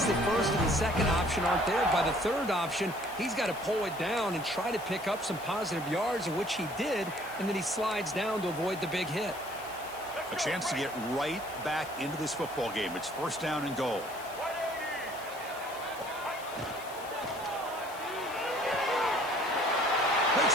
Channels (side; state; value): left; noise; hiss, 16 dB below the sound